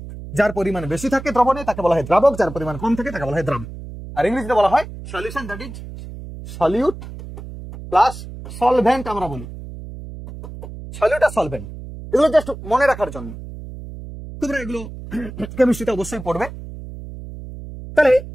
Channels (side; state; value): right; noise; hum, 12 dB below the sound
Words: যার পরিমাণ বেশি থাকে দ্রবণে তাকে বলা হয় দ্রাবক, যার পরিমাণ কম থাকে তাকে বলা হয় দ্রাবক। আর ইংরেজিতে বলা হয় solution, that is solute plus solvent. আমরা বলি সলিউট আর সলভেন্ট, এগুলো জাস্ট মনে রাখার জন্য। তোমরা এগুলো কেমিস্ট্রিতে অবশ্যই পড়বে। তাহলে